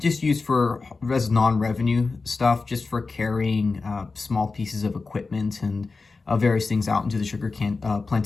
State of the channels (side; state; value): right; quieter; 4.1 dB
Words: used for non-revenue stuff, just for carrying small pieces of equipment and various things out into the sugar